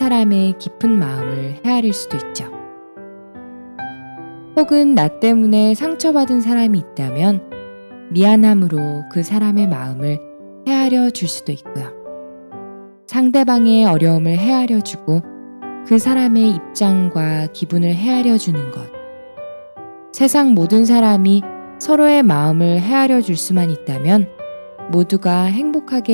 깊은 마음을 헤아릴 수도 있죠. 혹은 나 때문에 상처받은 사람이 있다면 미안함으로 그 사람의 마음을 헤아려 줄 수도 있고요. 상대방의 어려움을 헤아려 주고 그 사람의 입장과 기분을 헤아려 주는 것. 세상 모든 사람이 서로의 마음을 헤아려 줄 수만 있다면 모두가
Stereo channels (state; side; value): inverted; both; correlation -1.00